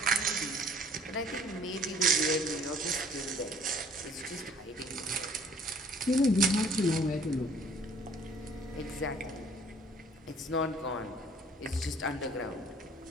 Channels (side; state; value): both; normal; correlation 0.55